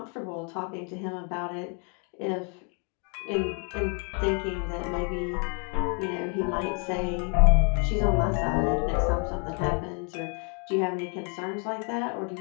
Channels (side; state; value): right; quieter; 38.0 dB